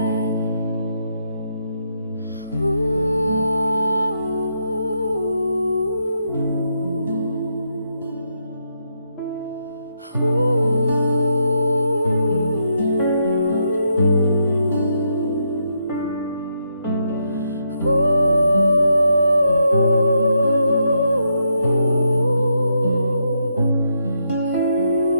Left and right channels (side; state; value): both; inverted; correlation -0.79